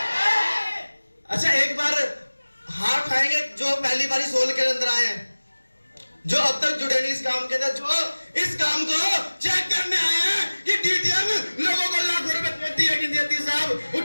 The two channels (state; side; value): inverted; both; correlation -1.00